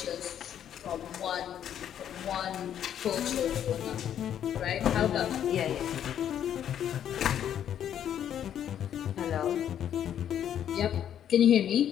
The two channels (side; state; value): right; quieter; 9.9 dB